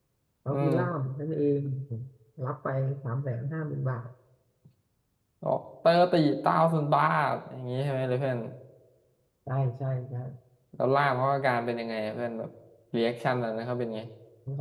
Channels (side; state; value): both; identical; correlation 1.00